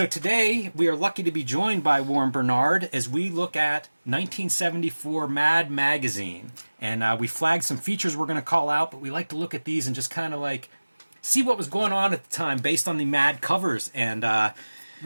today, we are lucky to be joined by Warren Bernard as we look at 1974 Mad Magazine. And we flagged some features we're going to call out, but we like to look at these and just kind of like see what was going on at the time based on the Mad covers. And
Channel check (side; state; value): both; inverted; correlation -1.00